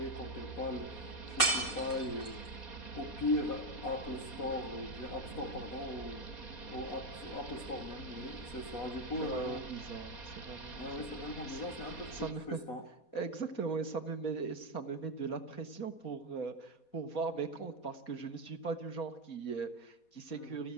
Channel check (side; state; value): right; late; 4.2 ms